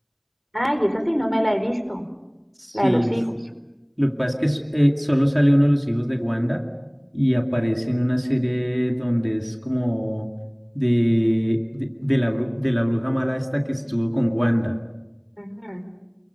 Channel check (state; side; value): identical; both; correlation 1.00